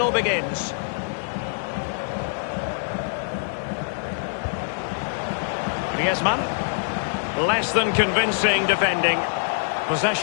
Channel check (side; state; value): right; silent; digital silence